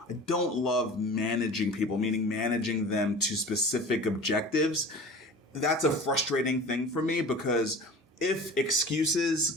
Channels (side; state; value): both; normal; correlation 0.39